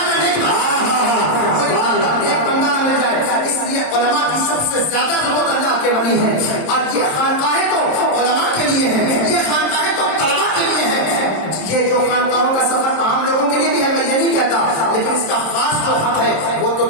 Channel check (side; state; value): right; late; 26 ms